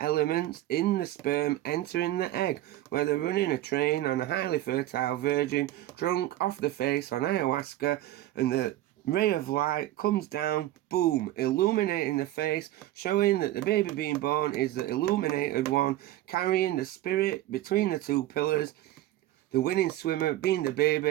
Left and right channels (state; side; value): quieter; left; 14.8 dB